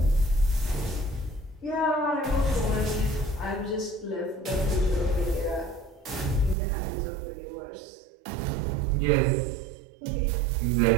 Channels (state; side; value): drops out; left; at 6.6 s